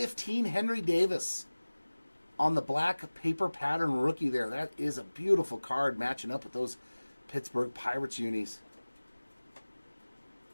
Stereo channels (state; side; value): inverted; both; correlation -1.00